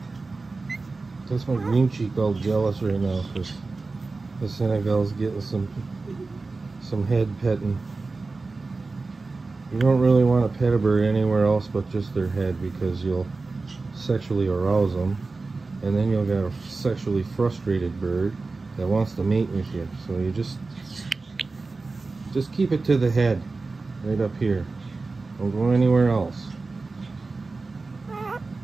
That's my green cheek all jealous right now because the Senegal's getting some head petting. You don't really want to pet a bird anywhere else but just their head because you'll sexually arouse them, and then you'll get a sexually frustrated bird that wants to mate with you. So you just keep it to the head, right up here. Don't go anywhere else.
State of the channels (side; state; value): left; quieter; 3.8 dB